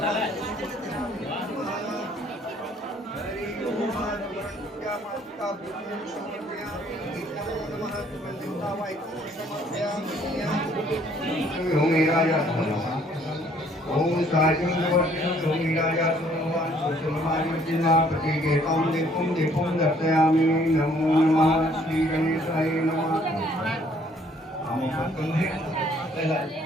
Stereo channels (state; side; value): normal; both; correlation 0.62